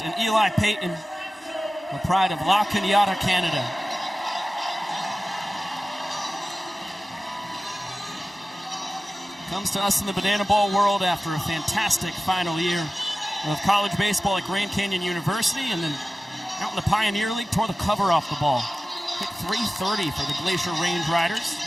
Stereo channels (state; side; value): normal; both; correlation 0.95